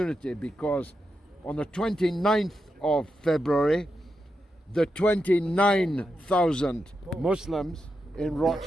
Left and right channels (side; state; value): both; normal; correlation 0.86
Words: because on the 29th of February, the 29,000 Muslims in